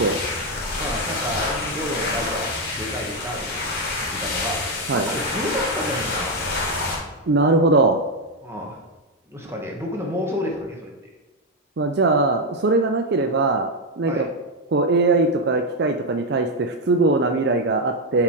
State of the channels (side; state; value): both; normal; correlation 0.05